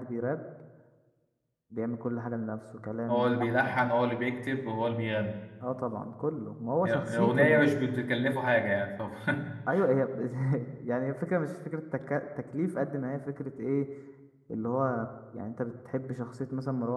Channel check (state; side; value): identical; both; correlation 1.00